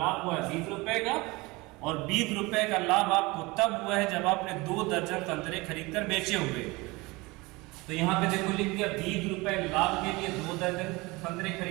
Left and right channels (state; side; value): quieter; left; 23.4 dB